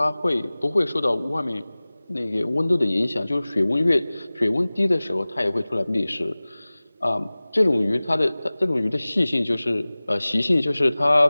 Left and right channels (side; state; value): both; inverted; correlation -0.99